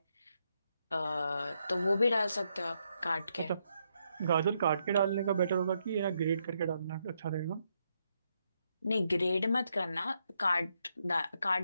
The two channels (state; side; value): inverted; both; correlation -0.79